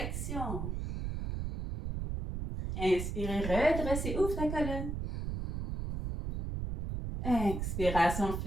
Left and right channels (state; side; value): noise; right; rumble, 3 dB below the sound